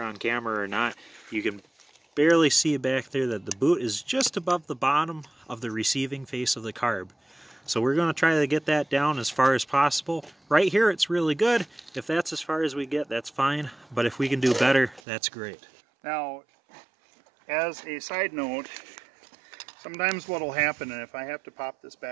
camera or not. You can barely see back there that the boot is just above the bottom of the receiving face of the carb. So we're going to try to get that down as far as possible. Right here it's really good. If that's as far as we get, that's fine. But if we can do better, that's great. Now, as a side note, sometimes what will happen, and if I have to pop this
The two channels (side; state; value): left; drops out; at 15.0 s